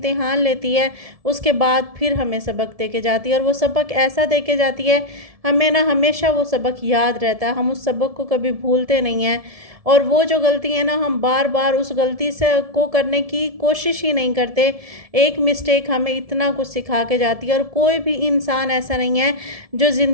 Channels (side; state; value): left; late; 1.7 ms